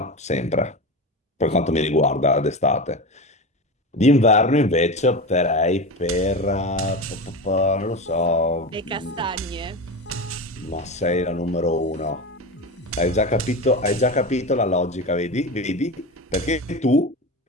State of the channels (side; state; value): both; normal; correlation 0.24